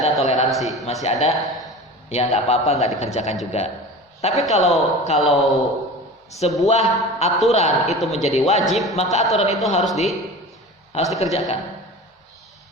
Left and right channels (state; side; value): normal; both; correlation 0.35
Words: toleransi, masih ada ya nggak apa-apa nggak dikerjakan juga. Tapi kalau sebuah aturan itu menjadi wajib, maka aturan itu harus dikerjakan.